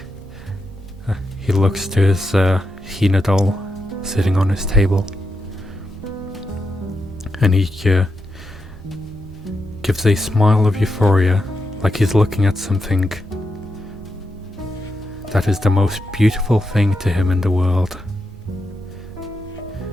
He looks to his Hina doll sitting on his table. And he gives a smile of euphoria, like he's looking at something that is the most beautiful thing to him in the world.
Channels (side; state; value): both; normal; correlation 0.86